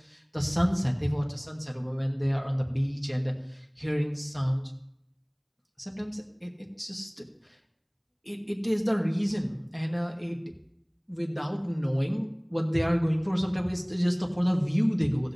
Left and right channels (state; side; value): identical; both; correlation 1.00